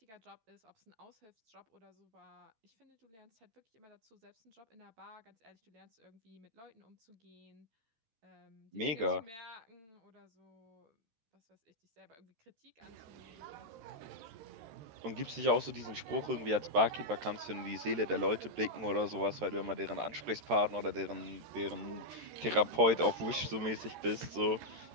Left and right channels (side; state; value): left; late; 13 ms